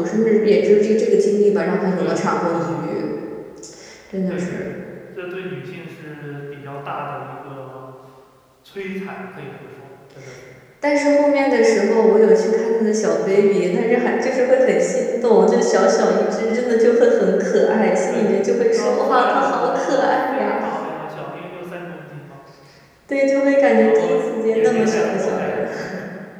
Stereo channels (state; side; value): identical; both; correlation 1.00